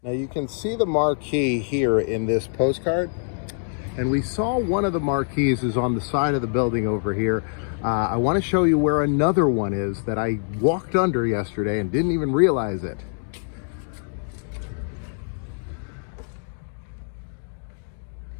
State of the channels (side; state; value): right; silent; digital silence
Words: Now you can see the marquee here in this postcard, and we saw one of the marquees is on the side of the building over here. I want to show you where another one is that I walked under yesterday and didn't even realize it.